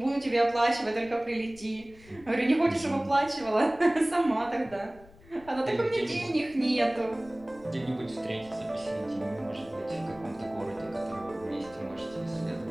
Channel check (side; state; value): left; noise; rumble, 23 dB below the sound